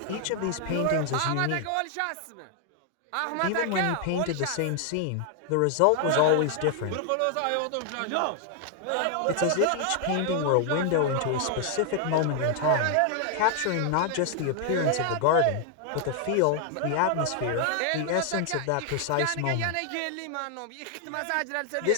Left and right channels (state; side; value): different; both; correlation 0.00